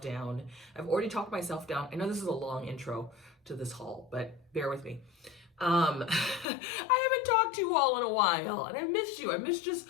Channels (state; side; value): drops out; right; at 6.5 s